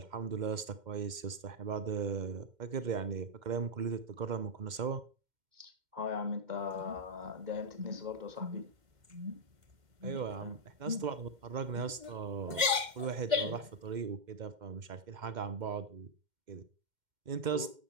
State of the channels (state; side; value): late; left; 2.1 ms